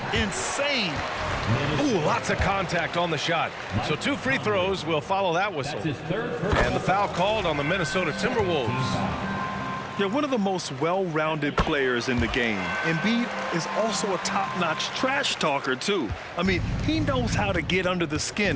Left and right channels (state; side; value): identical; both; correlation 1.00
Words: Insane. Ooh, lots of contact on the shot. So 2 free throws will follow that whistle. That's his third And personal the foul called on the Minnesota Timberwolves. They're one of the most well-rounded players in the game. Embiid is also a top-notch trash talker, too. I mean, he knows how to get under the skin